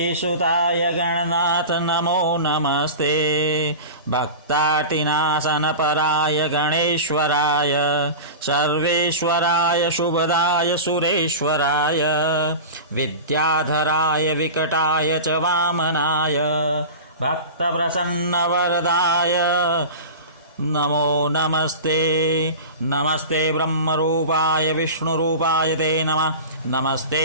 गणनाथ नमो नमस्ते। भक्तार्तिनाशनपराय गणेश्वराय सर्वेश्वराय शुभदाय सुरेश्वराय विद्याधराय विकटाय च वामनाय भक्तप्रसन्नवरदाय नमो नमस्ते। नमस्ते ब्रह्मरूपाय विष्णुरूपाय ते नमः।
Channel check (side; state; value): both; inverted; correlation -0.30